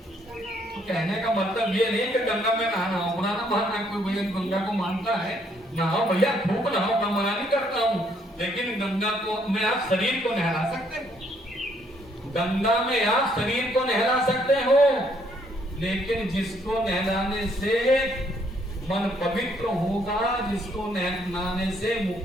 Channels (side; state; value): both; normal; correlation 0.69